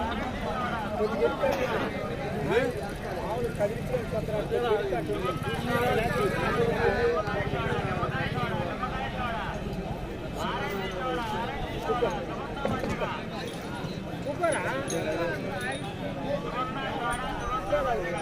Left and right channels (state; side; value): identical; both; correlation 1.00